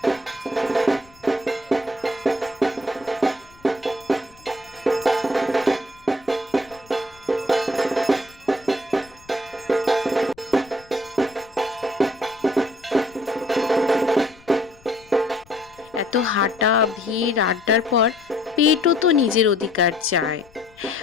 এত হাঁটা, ভিড়, আড্ডার পর পেটও তো নিজের অধিকার চায়।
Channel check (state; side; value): noise; left; rumble, 27 dB below the sound